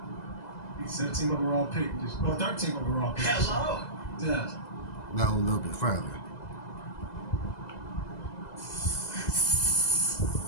17th overall pick. 13th overall pick. Hello. Yeah. No, a little bit further.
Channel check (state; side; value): late; right; 2.0 ms